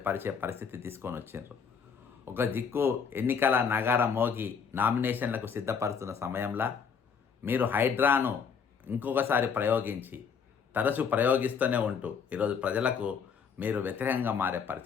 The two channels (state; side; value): quieter; right; 6.4 dB